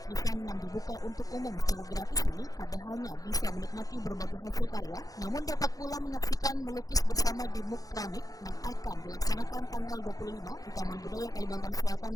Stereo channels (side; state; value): right; late; 0.17 ms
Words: yang dibuka untuk umum secara gratis ini tidak hanya bisa menikmati berbagai hasil karya, namun dapat pula menyaksikan melukis bersama di MUK Keramik yang akan dilaksanakan tanggal 25 di Taman Budaya Kalimantan Selatan